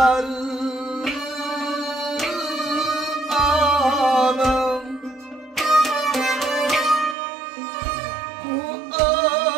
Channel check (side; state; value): left; drops out; at 7.2 s